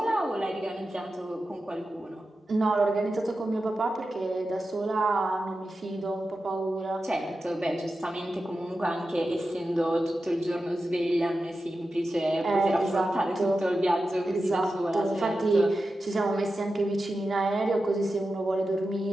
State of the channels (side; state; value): both; normal; correlation 0.91